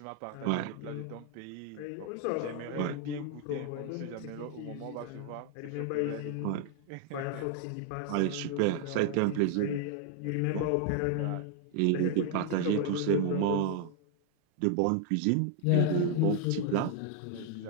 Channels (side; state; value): both; different; correlation 0.00